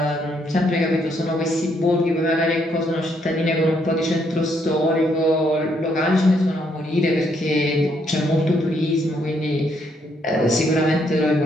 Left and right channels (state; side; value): normal; both; correlation 0.73